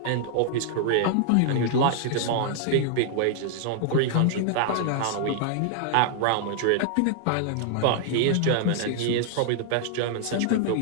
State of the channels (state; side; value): different; both; correlation -0.01